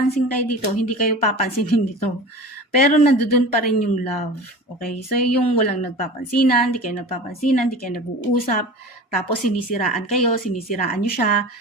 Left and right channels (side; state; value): both; normal; correlation 0.35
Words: kayo dito, hindi kayo papansinin dito. Pero nandoon pa rin yung love. Okay? So, yung walang nagpapansinan, hindi kayo nagpapansinan, hindi kayo nag-uusap, tapos sinisiraan nyo siya,